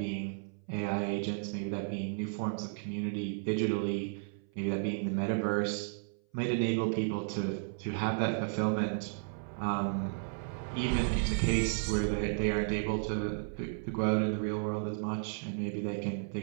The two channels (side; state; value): left; silent; 55 dB below the other